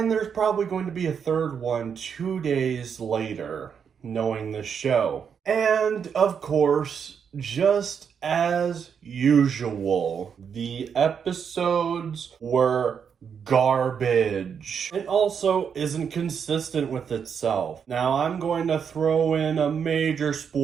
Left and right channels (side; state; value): left; quieter; 7.1 dB